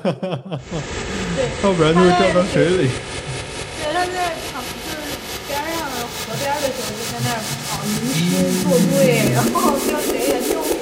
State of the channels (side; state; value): both; identical; correlation 1.00